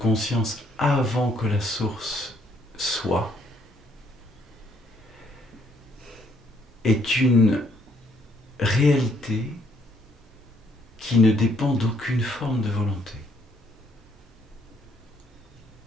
avant que la source soit, est une réalité qui ne dépend d'aucune forme de volonté.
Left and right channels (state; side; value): normal; both; correlation 0.67